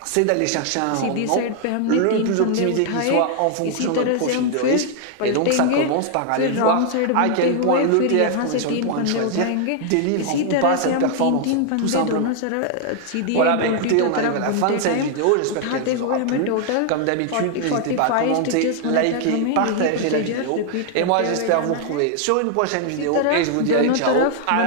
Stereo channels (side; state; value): both; different; correlation 0.00